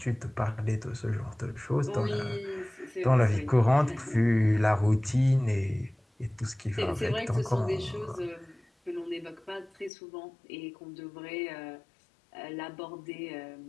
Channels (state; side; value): drops out; right; at 9.9 s